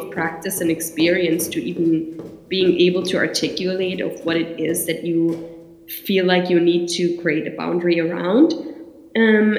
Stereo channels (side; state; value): both; identical; correlation 1.00